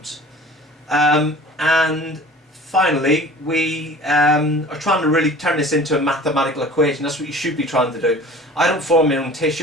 And finally, we are trying to really turn this into a mathematical equation. That's what you should be trying to do. I don't form my own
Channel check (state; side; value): normal; both; correlation 0.44